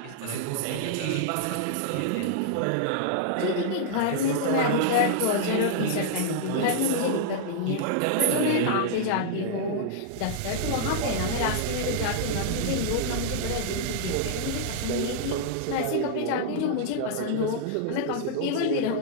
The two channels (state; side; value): different; both; correlation -0.01